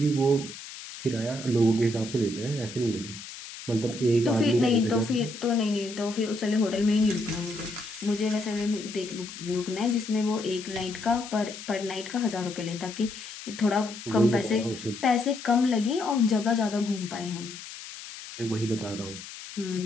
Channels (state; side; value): noise; left; hiss, 13 dB below the sound